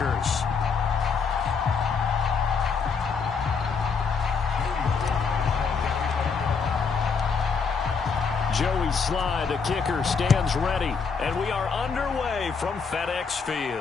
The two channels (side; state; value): right; quieter; 5.4 dB